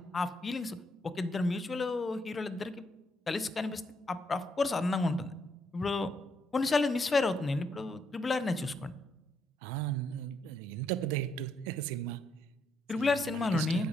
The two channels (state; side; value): normal; both; correlation 0.76